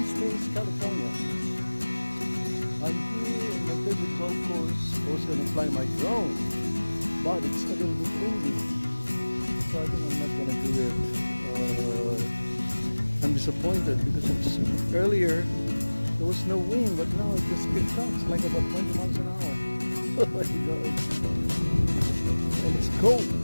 Springs, California. I'm here in my favorite golf course. I was going to fly my drone, but it's a little bit windy, so I think I'm not going to do it. I'm disappointed because earlier there was no wind, but now it just picked up. It's like about 20 miles an hour. Oh my God. And it's cold.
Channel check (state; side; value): inverted; both; correlation -1.00